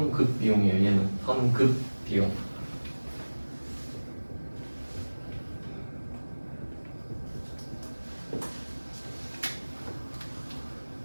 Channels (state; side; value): inverted; both; correlation -1.00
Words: 비용이에요. 얘는 선급 비용.